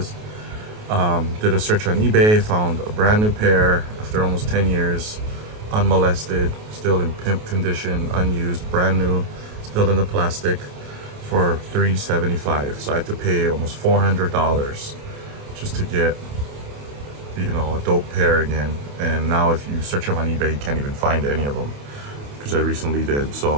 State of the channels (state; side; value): late; left; 28 ms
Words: Did a search on eBay, found a brand new pair after almost 10 years, unmolested, still in pimp condition, unused, brand new, still in the plastic, for $375. So I had to pay almost $400 just to get, you know, a dope pair again. And now if you search them on eBay, you can't even find any of them, because I recently did.